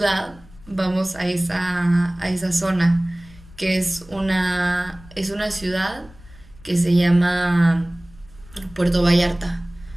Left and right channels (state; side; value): noise; left; rumble, 22 dB below the sound